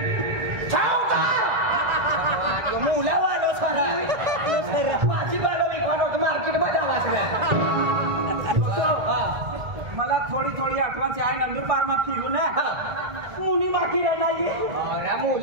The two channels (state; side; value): late; left; 1.7 ms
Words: मुला वालो सर भाजीपालो विकवानो मार्केट मध्ये आला मला थोडी आठवण आहे नंदुरबार में फिरू ना मुनी माखी नाही